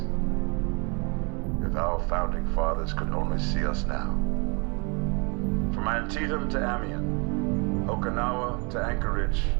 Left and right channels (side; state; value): left; quieter; 32.0 dB